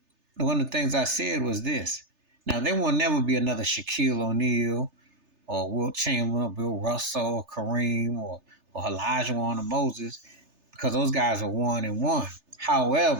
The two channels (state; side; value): late; left; 3.3 ms